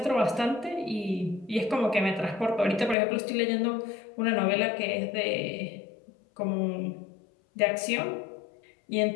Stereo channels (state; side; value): drops out; right; at 3.0 s